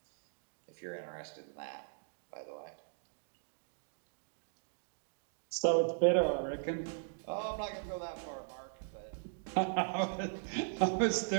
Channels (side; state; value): left; silent; digital silence